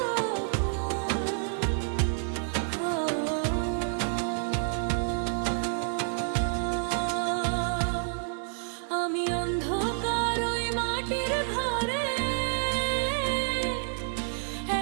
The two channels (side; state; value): left; silent; digital silence